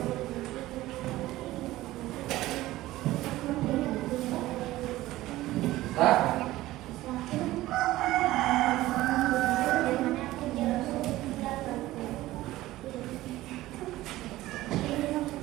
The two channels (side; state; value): left; quieter; 16.6 dB